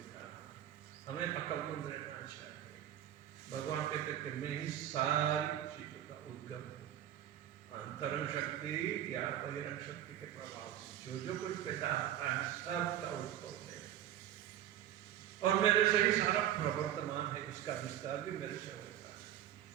हमें अकलमंद रहना चाहिए। भगवान कहते कि मैं ही सारी चीजों का उद्गम हूँ, अंतरंग शक्ति या बहिरंग शक्ति के प्रभाव से जो कुछ पैदा होता है सबका उद्भव है, और मेरे से ही सारा प्रवर्तमान है, इसका विस्तार भी मेरे से होता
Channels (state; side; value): quieter; left; 11.4 dB